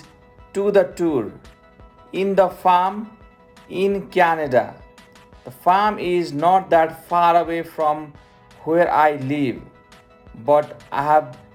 to the tour in the farm in Canada. The farm is not that far away from where I live, but I have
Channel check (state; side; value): identical; both; correlation 1.00